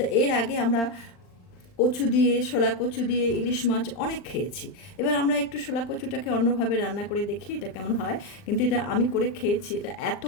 এর আগে আমরা কচু দিয়ে, শোলা কচু দিয়ে ইলিশ মাছ অনেক খেয়েছি। এবার আমরা একটু শোলা কচুটাকে অন্যভাবে রান্না করে দেখি এটা কেমন হয়। কিন্তু এটা আমি করে খেয়েছি, এটা এত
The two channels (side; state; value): right; late; 39 ms